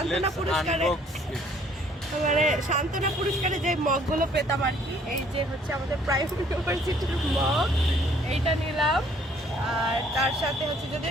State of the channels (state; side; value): normal; both; correlation 0.60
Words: পুরস্কারে, মানে সান্ত্বনা পুরস্কারে যে মগগুলো পেতাম আর কি, এই যে হচ্ছে আমাদের প্রাইম ইউনিভার্সিটির মগ, এইটা নিলাম। আর তার সাথে হচ্ছে যদি